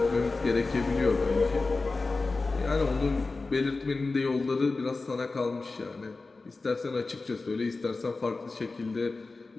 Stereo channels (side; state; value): right; quieter; 3.7 dB